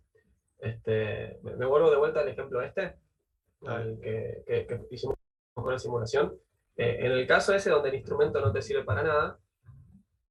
Me vuelvo de vuelta al ejemplo al que hicimos con la simulación. En el caso ese donde el instrumento no te sirve para nada,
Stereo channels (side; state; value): both; identical; correlation 1.00